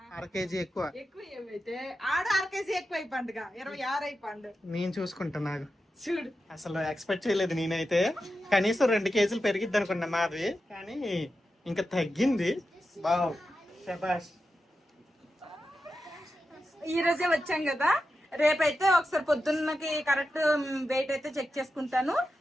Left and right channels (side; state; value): both; normal; correlation 0.90